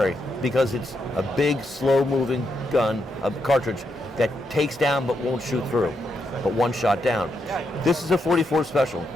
because it's a big, slow-moving gun, a cartridge that takes down but won't shoot through, but one shot down. This is a 44 Special.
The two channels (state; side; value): normal; both; correlation 0.81